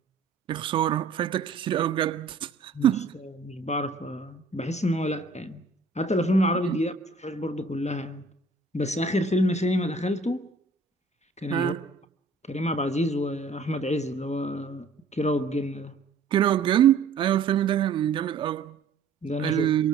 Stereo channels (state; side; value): quieter; left; 4.0 dB